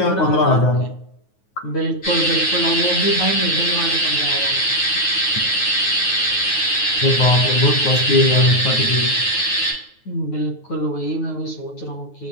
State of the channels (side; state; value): right; late; 9.4 ms